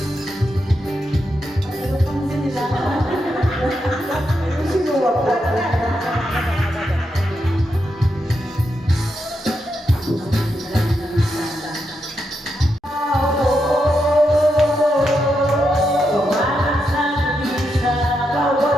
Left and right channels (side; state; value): both; normal; correlation 0.84